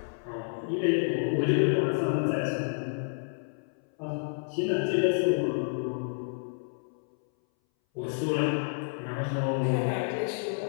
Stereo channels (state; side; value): silent; right; 58 dB below the other